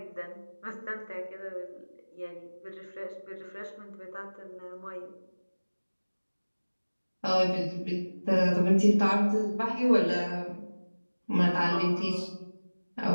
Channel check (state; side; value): inverted; both; correlation -1.00